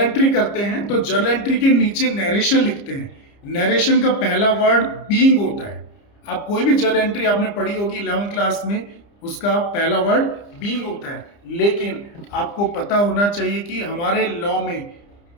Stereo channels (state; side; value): late; right; 30 ms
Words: करते हैं तो जर्नल एंट्री के नीचे नरेशन लिखते हैं। नरेशन का पहला वर्ड बीइंग होता है। आप कोई भी जर्नल एंट्री आपने पढ़ी होगी 11th क्लास में, उसका पहला वर्ड बीइंग होता है। लेकिन आपको पता होना चाहिए कि हमारे लॉ में